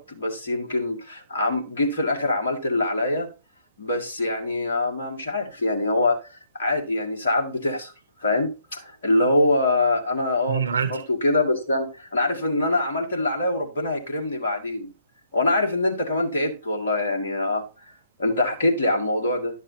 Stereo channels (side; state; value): both; inverted; correlation -0.73